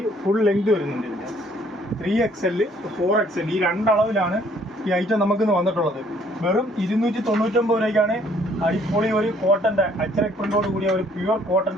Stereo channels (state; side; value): normal; both; correlation 0.62